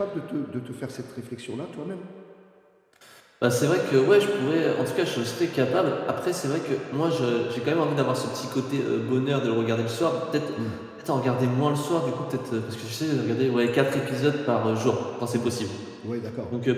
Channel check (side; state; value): both; identical; correlation 1.00